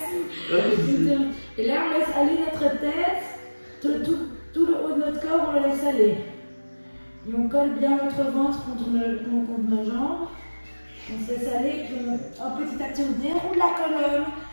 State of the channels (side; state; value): both; inverted; correlation -1.00